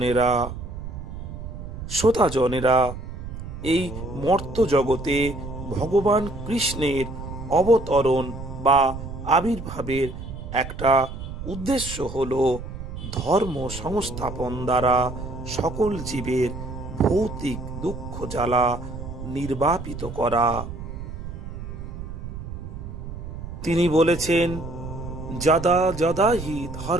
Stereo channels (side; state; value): right; noise; rumble, 9 dB below the sound